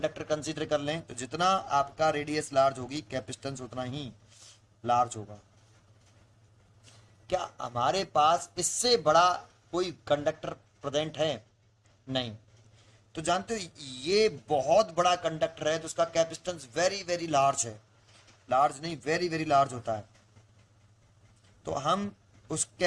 कंसीडर कर लें, तो जितना आपका रेडियस लार्ज होगी कैपेसिटेंस उतना ही लार्ज होगा। क्या हमारे पास इससे बड़ा कोई कंडक्टर प्रेजेंट है, नहीं। तो जानते हो ये बहुत बड़ा कंडक्टर है तो उसका कैपेसिटेंस वेरी वेरी लार्ज है, लार्ज नहीं वेरी वेरी लार्ज होता है। तो हम उस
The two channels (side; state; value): both; identical; correlation 1.00